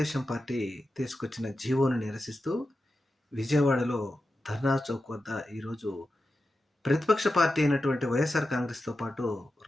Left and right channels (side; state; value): both; normal; correlation 0.90